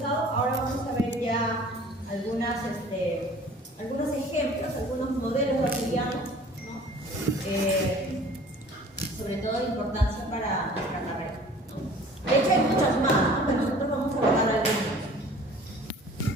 Ahora vamos a ver ya algunos ejemplos, algunos modelos bacterianos, ¿no? Sobre todo de importancia para nuestra carrera, ¿no? De hecho hay muchas más, ¿no? Pero nosotros vamos a abordar algunos.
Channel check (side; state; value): both; normal; correlation 0.48